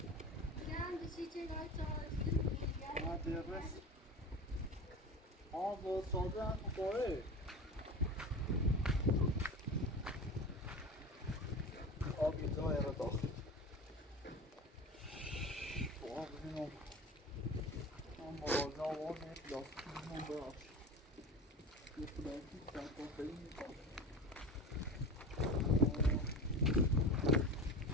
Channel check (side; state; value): both; normal; correlation 0.30